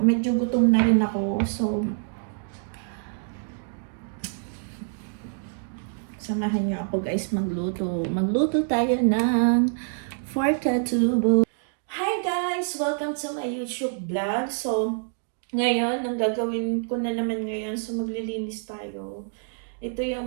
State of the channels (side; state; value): left; silent; digital silence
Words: gutom na rin ako. So, samahan niyo ako guys magluto. Magluto tayo ng pork adobo. Hi guys! Welcome to my YouTube vlog. So, ngayon, ang gagawin ko na naman ngayon, so maglilinis tayo. Ito